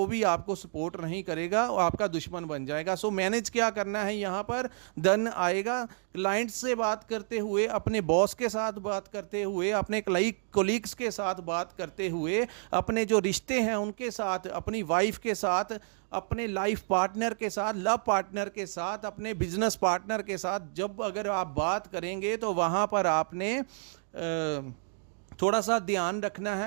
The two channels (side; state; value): left; silent; 58 dB below the other